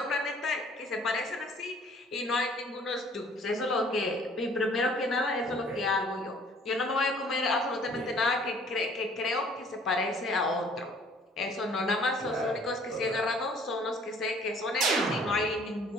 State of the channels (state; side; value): normal; both; correlation 0.56